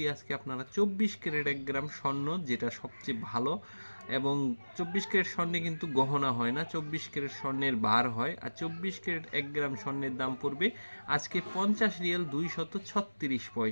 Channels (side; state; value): both; inverted; correlation -1.00